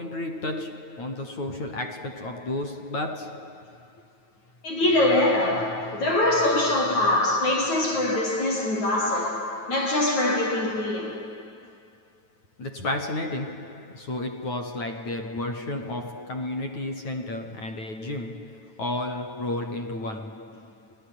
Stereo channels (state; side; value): late; right; 9.3 ms